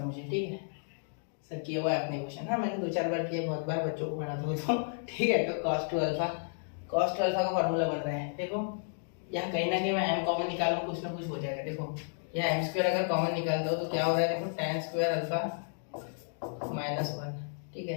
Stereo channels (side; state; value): right; silent; digital silence